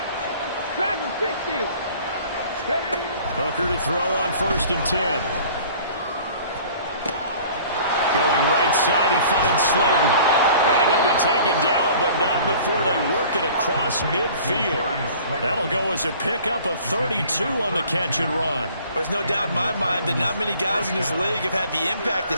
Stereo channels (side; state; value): both; inverted; correlation -0.49